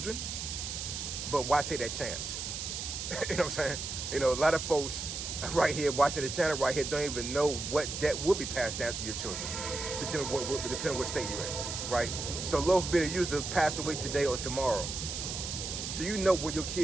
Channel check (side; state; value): right; noise; hiss, 5 dB below the sound